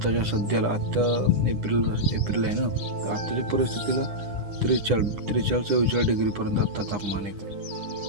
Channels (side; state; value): left; late; 9.8 ms